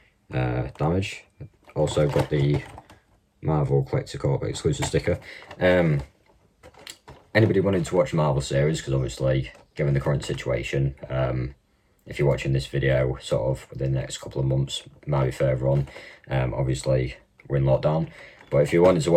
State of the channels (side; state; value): both; identical; correlation 1.00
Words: damage. Also got the Marvel Collector Corps exclusive sticker. Anybody wanting to watch the Marvel series, because obviously given the current situation, if you're watching this video sort of within the next couple of months, might be further on, obviously we're in lockdown, but if you wanted to